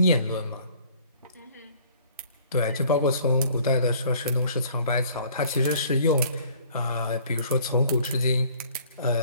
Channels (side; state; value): both; inverted; correlation -0.55